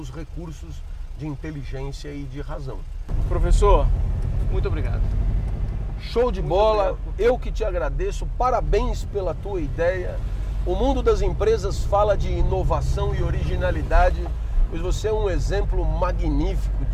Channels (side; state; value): both; identical; correlation 1.00